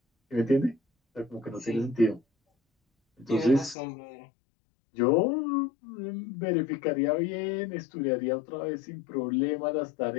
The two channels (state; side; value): drops out; right; at 3.8 s